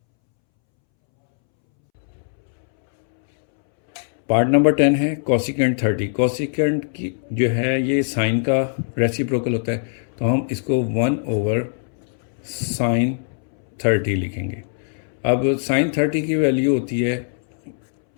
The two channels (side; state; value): right; silent; 65 dB below the other